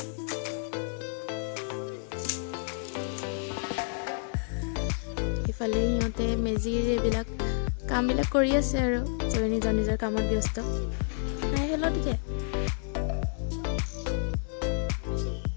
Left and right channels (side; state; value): right; silent; 58 dB below the other